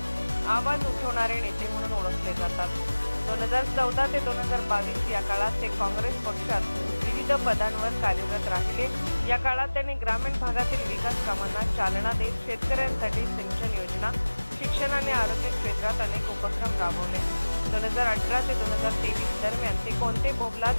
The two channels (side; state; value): both; inverted; correlation -1.00